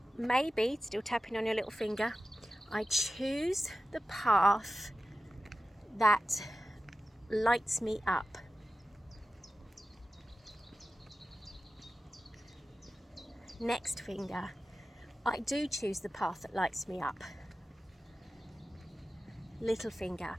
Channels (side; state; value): both; normal; correlation 0.93